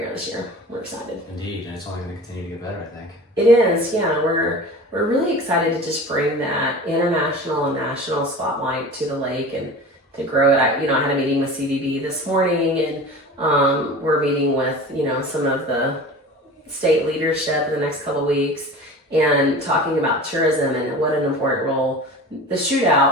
this year. We're excited. Indeed, and it's only going to continue to get better, I think. It is, yeah. We're really excited to just bring that international and national spotlight to the lake and to grow it. I had a meeting with CVB this morning, and we're meeting with some of the state leadership in the next couple of weeks, and talking about tourism and what an important role the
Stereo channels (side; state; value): both; normal; correlation 0.36